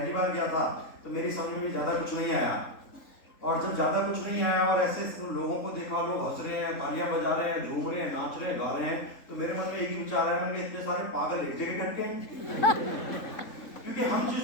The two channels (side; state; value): right; late; 3.8 ms